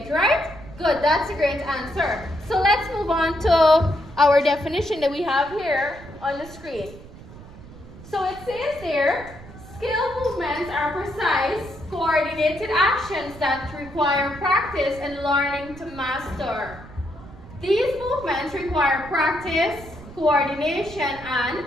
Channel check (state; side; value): noise; right; rumble, 17 dB below the sound